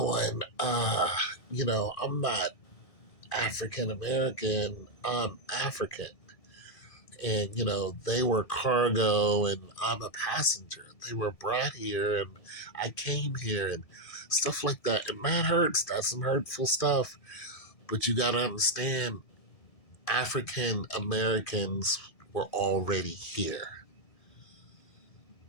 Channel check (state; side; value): late; right; 1.7 ms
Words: I'm not African American, I'm African. And they were cargo and I'm a passenger. They were brought here and I came here, and stuff like that. And that hurts. That's some hurtful stuff. But you got to understand, African Americans were already here.